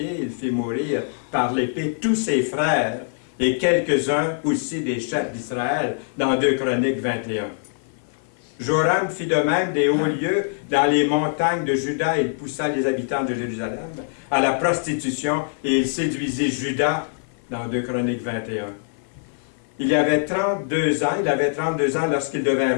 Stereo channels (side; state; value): right; silent; 55 dB below the other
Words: il fit mourir par l'épée tous ses frères et quelques-uns aussi des chefs d'Israël, dans 2 Chroniques 21. Joram fit de même des hauts lieux dans les montagnes de Juda. Il poussa les habitants de Jérusalem à la prostitution et il séduisit Juda dans 2 Chroniques 21. Il avait 32 ans lorsqu'il devint